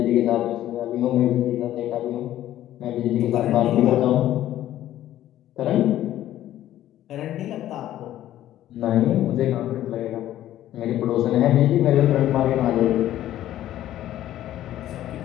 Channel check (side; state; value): right; quieter; 13.0 dB